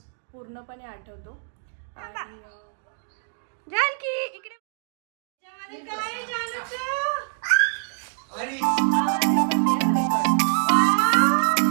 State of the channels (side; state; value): left; silent; digital silence